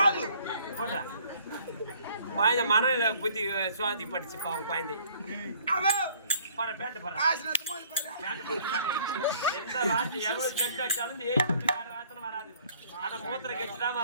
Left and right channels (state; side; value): inverted; both; correlation -0.58